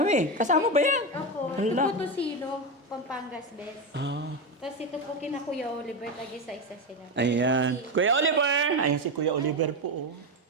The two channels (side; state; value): both; normal; correlation 0.13